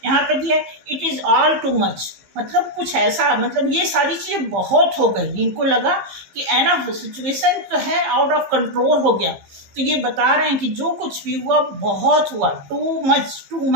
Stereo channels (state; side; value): late; left; 15 ms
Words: यहाँ पे दिया है it is all too much, मतलब कुछ ऐसा, मतलब ये सारी चीजें बहुत हो गई, इनको लगा कि एनफ सिचुएशन तो है, आउट ऑफ कंट्रोल हो गया। तो ये बता रहे हैं कि जो कुछ भी हुआ बहुत हुआ, टू